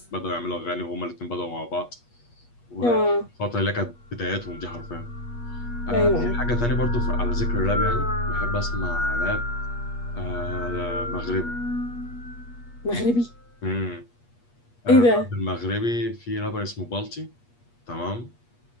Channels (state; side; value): late; right; 8.4 ms